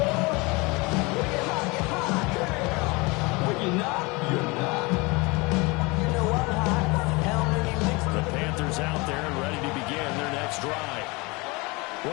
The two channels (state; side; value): quieter; right; 25.9 dB